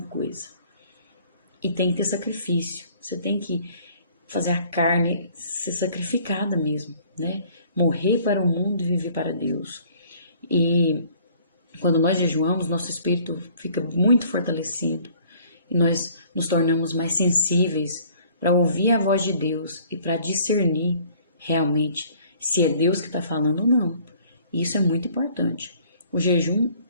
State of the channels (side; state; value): both; inverted; correlation -0.56